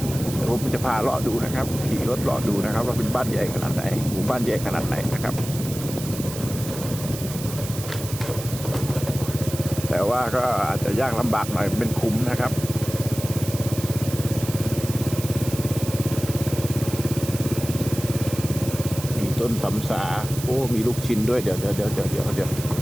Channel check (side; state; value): right; noise; hiss, 10 dB below the sound